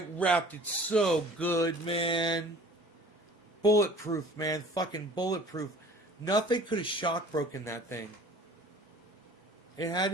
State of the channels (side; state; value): both; normal; correlation 0.47